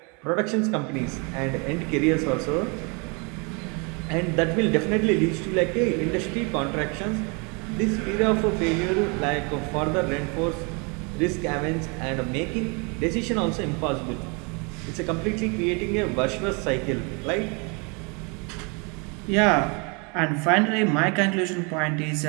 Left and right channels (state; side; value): quieter; left; 32.3 dB